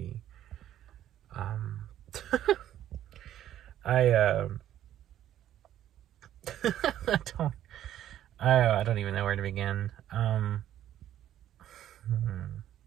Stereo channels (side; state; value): left; quieter; 11.8 dB